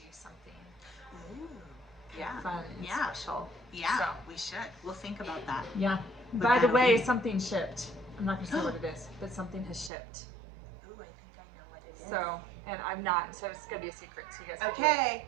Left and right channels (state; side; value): drops out; left; at 9.9 s